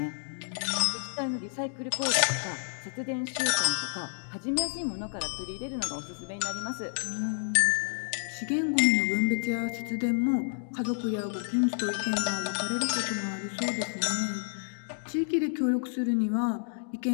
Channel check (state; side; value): silent; right; digital silence